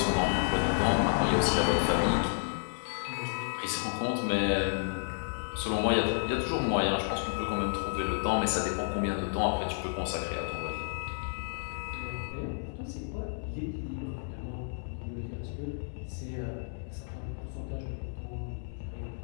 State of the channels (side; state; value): right; silent; 57 dB below the other